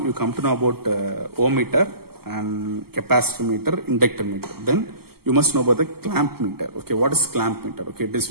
come to know about ohm meter and capacitor meter, inductor meter. Then you must know about the clamp meter. Okay, what is clamp meter? Okay, it is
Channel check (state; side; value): late; left; 0.95 ms